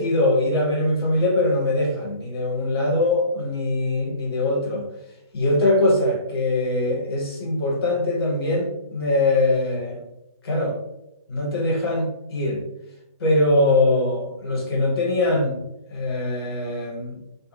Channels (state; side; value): inverted; both; correlation -0.43